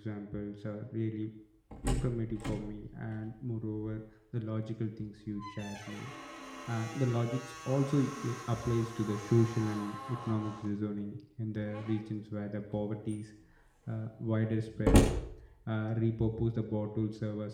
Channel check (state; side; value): identical; both; correlation 1.00